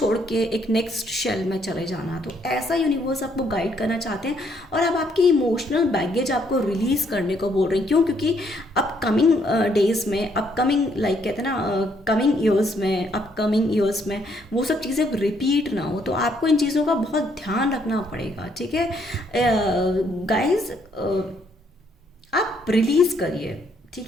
के एक नेक्स्ट शेल में चले जाना। तो ऐसा यूनिवर्स आपको गाइड करना चाहते हैं। और अब आपकी इमोशनल बैगेज आपको रिलीज़ करने को बोल रहे हैं। क्यों? क्योंकि अपकमिंग डेज में, अपकमिंग लाइक कहते हैं ना, कमिंग ईयर्स में वो सब चीज़ें रिपीट ना हो। तो आपको इन चीज़ों का बहुत ध्यान रखना पड़ेगा, ठीक है। गाइज आप रिलीज़ करिए,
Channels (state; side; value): normal; both; correlation 0.70